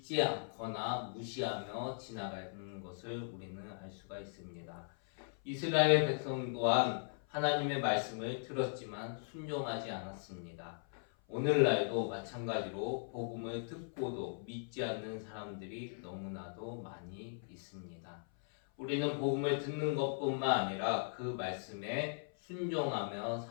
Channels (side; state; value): right; silent; 52 dB below the other